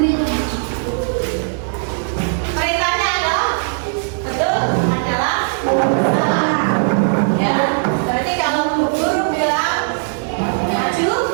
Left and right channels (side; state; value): left; silent; digital silence